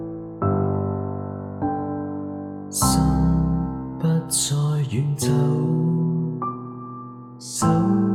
心不再遠走，手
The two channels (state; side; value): identical; both; correlation 1.00